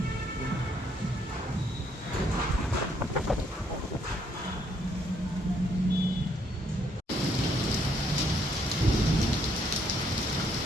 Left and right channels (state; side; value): normal; both; correlation 0.70